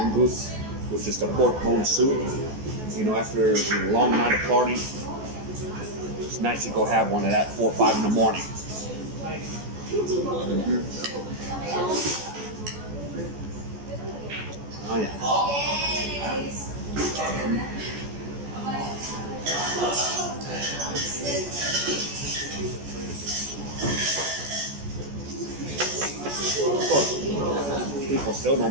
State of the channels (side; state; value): left; late; 14 ms